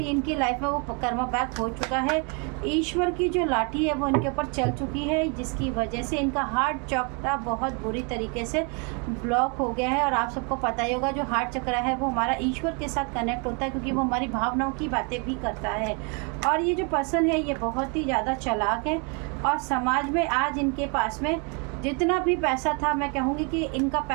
लाइफ में वो कर्मा बैक हो चुका है। ईश्वर की जो लाठी है वो इनके ऊपर चल चुकी है, जिसकी वजह से इनका हार्ट चक्र बहुत बुरी तरीके से ब्लॉक हो गया है। और आप सबको पता ही होगा, जो हार्ट चक्र है वो हमारा ईश्वर के साथ कनेक्ट होता है, क्योंकि वो हमारी भावनाओं की बातें भी करता है। और ये जो पर्सन है ये बहुत ही ज़्यादा चालाक है, और समाज में आज इनके पास में जितना भी पैसा था, मैं कहूँगी कि इनका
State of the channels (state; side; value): quieter; left; 35.0 dB